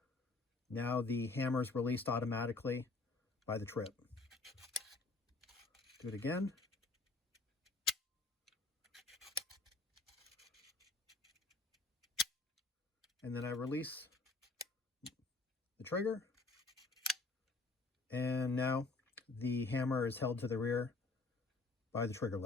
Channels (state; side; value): quieter; right; 3.5 dB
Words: now the hammer is released automatically by the trip. Do it again. And then I release the trigger. And now the hammer is held to the rear by the trigger